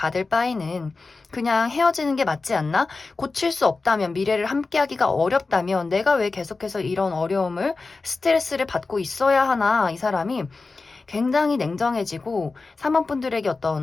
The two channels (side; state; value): right; quieter; 3.9 dB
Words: 바에는 그냥 헤어지는 게 맞지 않나? 고칠 수 없다면, 미래를 함께하기가 어렵다면 내가 왜 계속해서 이런 어려움을, 스트레스를 받고 있어야 하나? 이 사람이 굉장히 냉정해지고 3번 분들에게